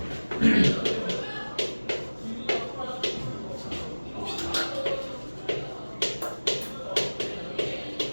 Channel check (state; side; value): inverted; both; correlation -1.00